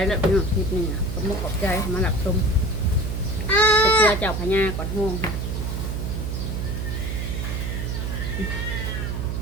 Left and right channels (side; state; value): right; noise; hum, 2 dB below the sound